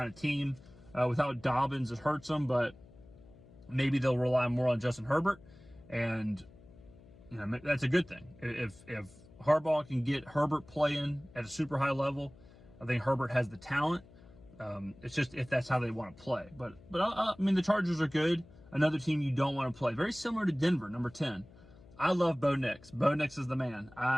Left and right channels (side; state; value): left; noise; hum, 23 dB below the sound